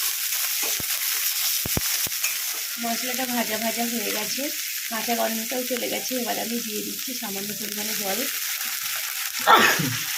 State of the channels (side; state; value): both; identical; correlation 1.00